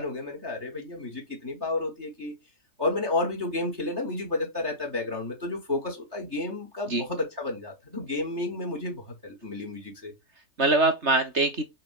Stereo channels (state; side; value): late; left; 3.3 ms